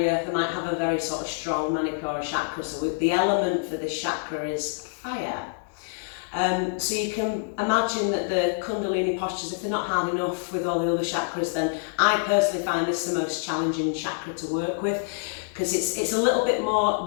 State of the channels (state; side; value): silent; right; digital silence